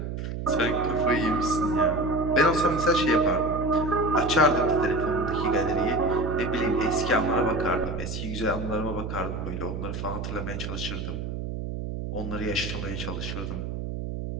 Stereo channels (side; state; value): right; noise; hum, 5 dB below the sound